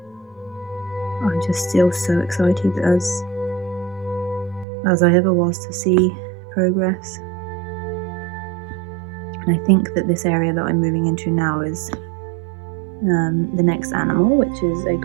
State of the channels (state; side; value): drops out; left; at 4.7 s